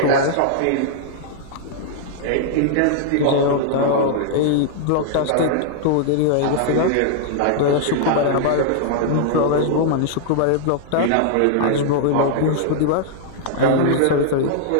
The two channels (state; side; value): different; both; correlation -0.01